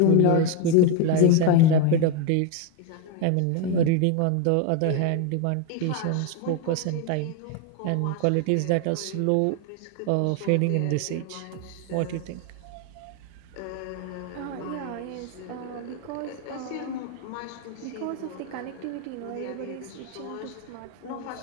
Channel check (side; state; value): both; different; correlation 0.01